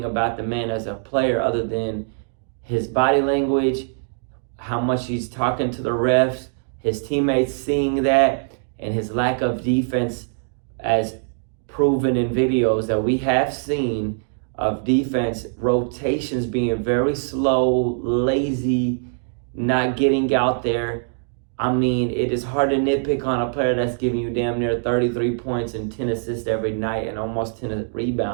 about the man as a player other than his body language, how much he's talking to the refs, his teammates seeing that, and his lack of defense as proven in videos that we have seen of defense rotations being very slow, lazy, not getting out there. I mean, it is hard to nitpick on a player that's giving you damn near 33 points and 10 assists every night and almost 10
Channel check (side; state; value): left; silent; digital silence